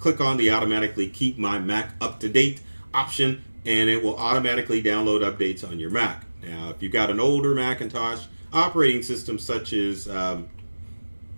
on the automatically keep my Mac up to date option, and it will automatically download updates on your Mac. Now, if you've got an older Macintosh operating system such as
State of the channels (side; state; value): both; inverted; correlation -1.00